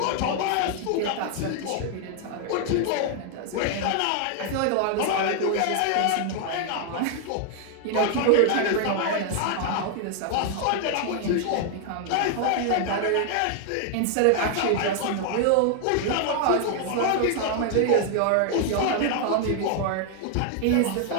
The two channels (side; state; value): both; different; correlation 0.00